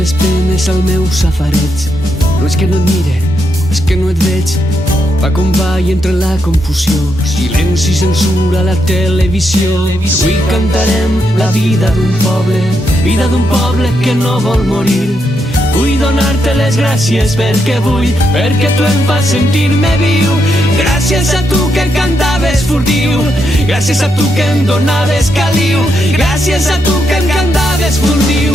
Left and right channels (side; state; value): both; normal; correlation 0.81